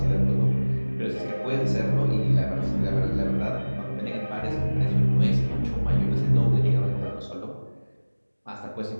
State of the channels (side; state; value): both; inverted; correlation -1.00